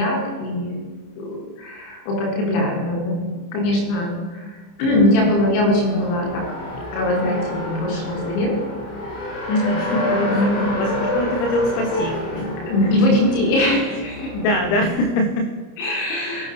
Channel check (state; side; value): late; right; 30 ms